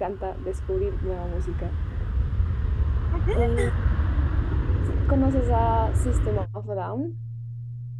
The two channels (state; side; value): identical; both; correlation 1.00